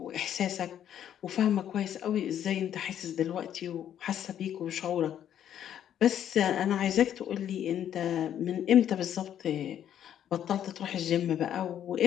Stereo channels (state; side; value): quieter; right; 10.1 dB